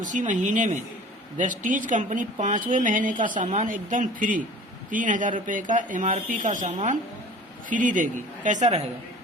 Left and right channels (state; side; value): normal; both; correlation 0.44